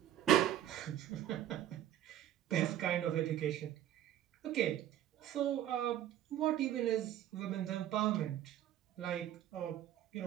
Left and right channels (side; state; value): left; quieter; 11.9 dB